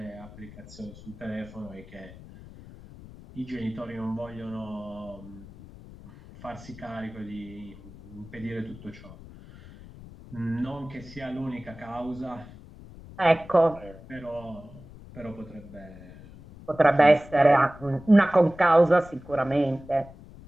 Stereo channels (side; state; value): left; noise; rumble, 18 dB below the sound